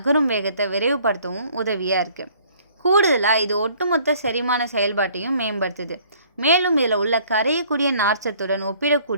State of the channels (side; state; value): both; inverted; correlation -0.57